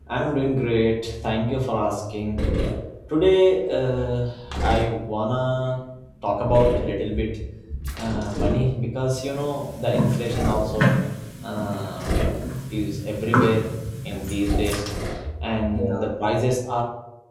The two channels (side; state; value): both; identical; correlation 1.00